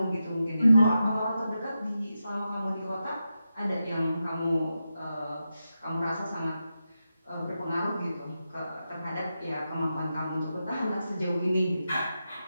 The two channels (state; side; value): inverted; both; correlation -0.89